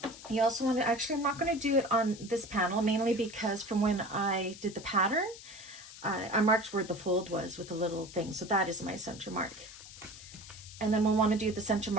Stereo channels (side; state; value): left; noise; hiss, 16 dB below the sound